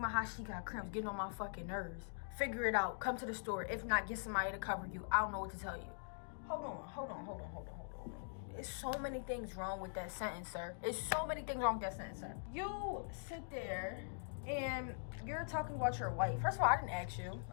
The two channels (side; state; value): right; silent; digital silence